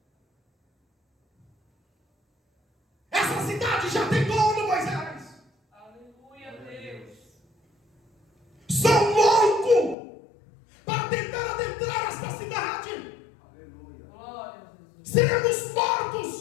Essa cidade já tem dono, Moisés. Aleluia, Deus. São loucos para tentar adentrar esta cidade. Aleluia. Glória a Jesus. Seremos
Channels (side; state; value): right; drops out; at 10.0 s